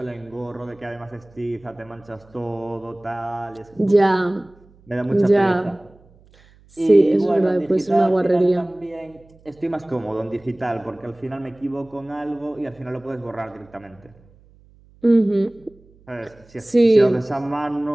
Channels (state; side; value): noise; right; hum, 28 dB below the sound